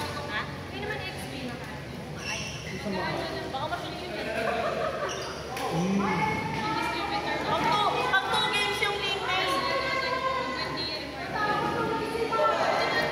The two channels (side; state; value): both; identical; correlation 1.00